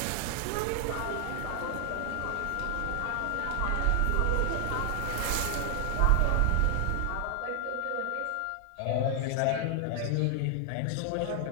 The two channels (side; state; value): both; different; correlation 0.00